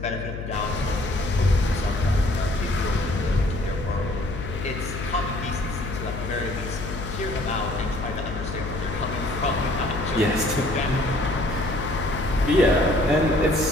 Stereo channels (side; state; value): left; noise; hum, 7 dB below the sound